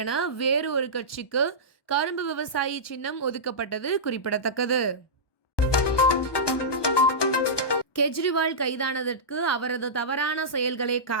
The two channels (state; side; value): late; right; 1.2 ms